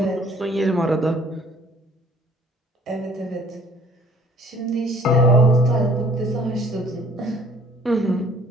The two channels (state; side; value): normal; both; correlation 0.55